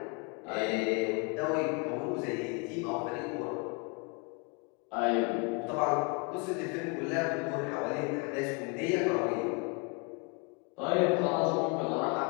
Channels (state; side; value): quieter; right; 32.6 dB